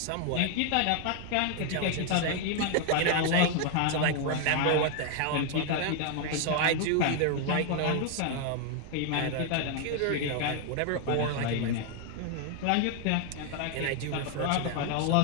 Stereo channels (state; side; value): different; both; correlation 0.00